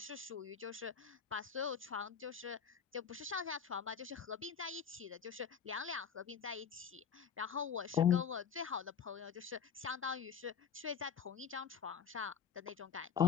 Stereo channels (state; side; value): quieter; right; 7.3 dB